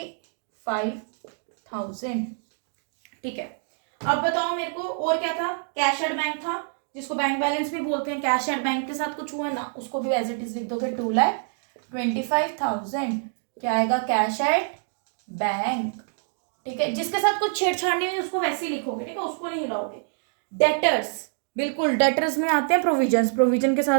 ठीक है. अब बताओ मेरे को और क्या था. कैश एट बैंक था, जिसको बैंक बैलेंस भी बोलते हैं. कैश एट बैंक के साथ कुछ हुआ ना, उसको भी एज इट इज लिख दोगे. 2,25,000 क्या आएगा कैश एट बैंक. ठीक है. जिसके साथ कुछ छेड़छाड़ नहीं हुई उसको वैसे ही लिखोगे. ठीक है, उसको नहीं हिलाओगे. डेटर्स, बिल्कुल डेटर्स में आते हैं प्रोविजंस. प्रोविजन के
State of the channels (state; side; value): silent; left; 61 dB below the other